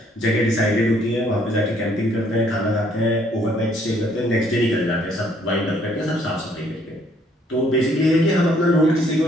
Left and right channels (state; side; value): normal; both; correlation 0.65